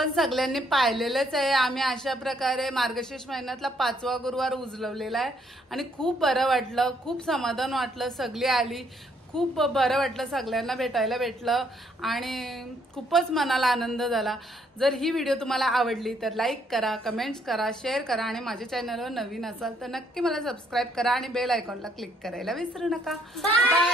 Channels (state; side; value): normal; both; correlation 0.69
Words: सगळ्यांनी पाहिलेलंच आहे. आम्ही अशा प्रकारे मार्गशीर्ष महिन्यातला 5वा गुरुवार उजलवलेला आहे आणि खूप बरं वाटलं, खूप समाधान वाटलं. सगळी आली, खूप बरं वाटलं, सगळ्यांना भेटायला भेटलं आणि खूपच मनाला आनंद झाला. जर ही व्हिडिओ तुम्हाला आवडली तर लाईक करा, कमेंट्स करा, शेअर करा आणि माझ्या चॅनलवर नवीन असाल तर नक्की मला सबस्क्राईब करा आणि बेल आयकॉनला क्लिक करायला विसरू नका. Bye